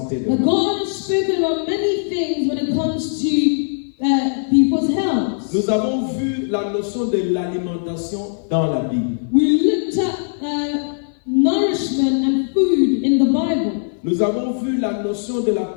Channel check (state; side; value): silent; right; 57 dB below the other